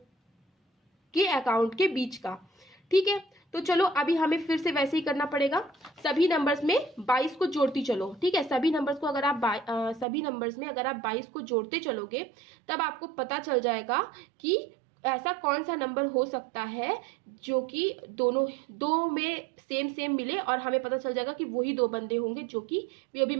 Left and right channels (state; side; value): drops out; left; at 10.1 s